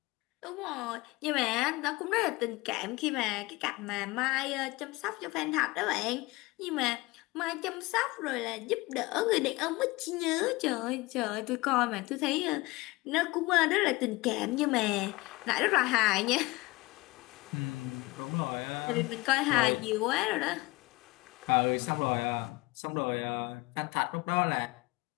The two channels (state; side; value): quieter; right; 22.3 dB